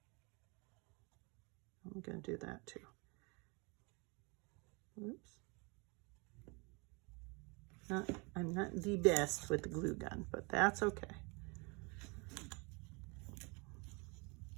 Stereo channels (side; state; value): left; quieter; 30.2 dB